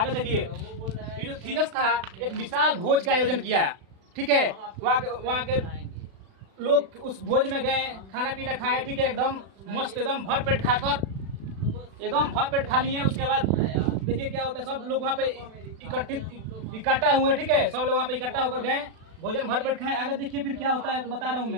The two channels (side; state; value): left; late; 36 ms